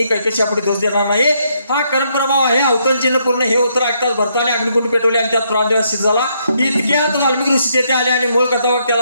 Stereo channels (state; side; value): inverted; both; correlation -0.74